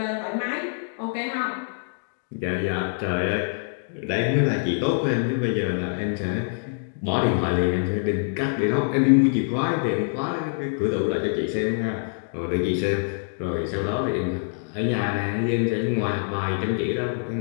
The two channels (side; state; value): right; silent; digital silence